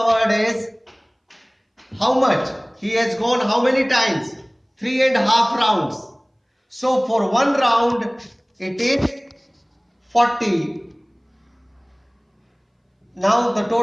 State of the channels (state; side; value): identical; both; correlation 1.00